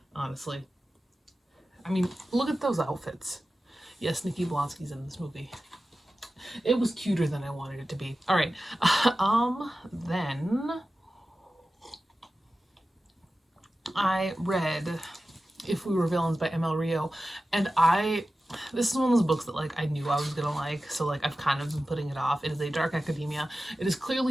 honestly. Look at those outfits. Yes, Nikki Blonsky's in this movie. It was cuter than I wanted it to be. All right. Then I read If We Were Villains by ML Rio, and this is one of those books that I knew I was gonna like, so I've kind of been putting it off. It is a dark academia. It is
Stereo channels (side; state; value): both; normal; correlation 0.94